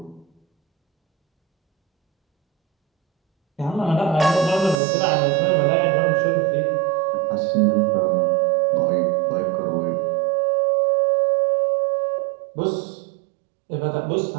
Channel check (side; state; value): left; drops out; at 4.8 s